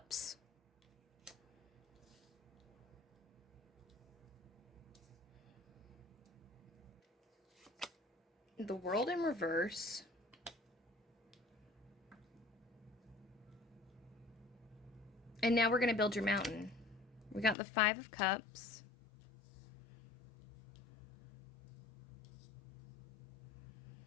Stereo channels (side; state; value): right; drops out; at 17.6 s